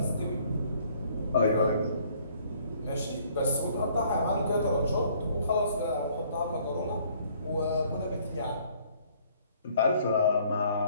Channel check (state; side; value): inverted; both; correlation -0.61